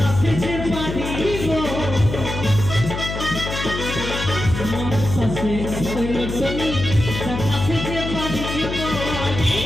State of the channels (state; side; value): noise; left; hum, 5 dB below the sound